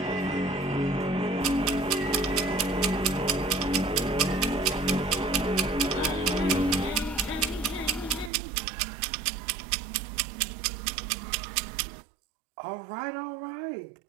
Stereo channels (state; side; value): drops out; left; at 8.3 s